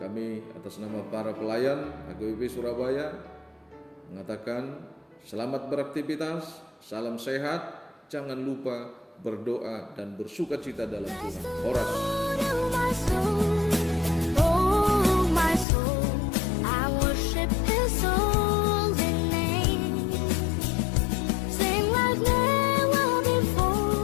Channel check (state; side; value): drops out; right; at 15.7 s